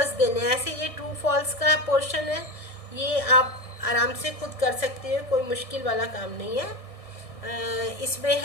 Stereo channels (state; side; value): late; right; 1.6 ms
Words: देने। ऐसे ये ट्रू फॉल्स का पोर्शन है, ये आप आराम से खुद कर सकते हो, कोई मुश्किल वाला काम नहीं है। इसमें